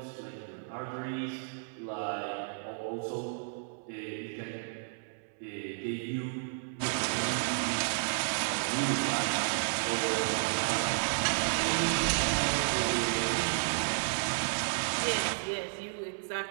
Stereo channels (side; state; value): left; silent; 56 dB below the other